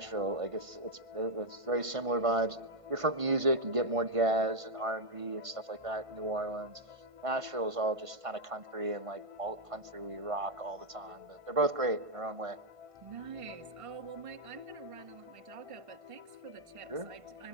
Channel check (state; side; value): late; left; 1.5 ms